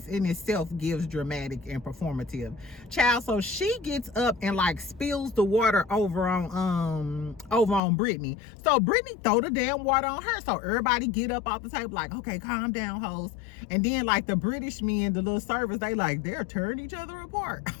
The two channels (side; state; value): right; drops out; at 7.8 s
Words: in itself gives dramatic and performative, child. So she gets up and like spills the water over on Brittany. So Brittany throw the damn water on her. So everybody get up off the table like, okay, calm down, hoes. And then like the British men, the little servers, they're tearing each other apart.